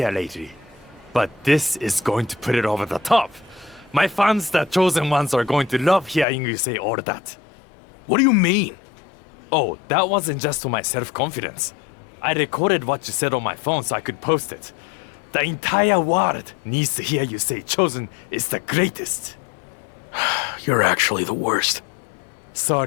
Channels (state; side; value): drops out; right; at 6.2 s